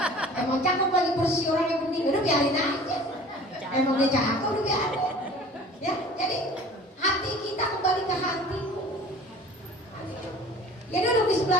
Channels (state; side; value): normal; both; correlation 0.45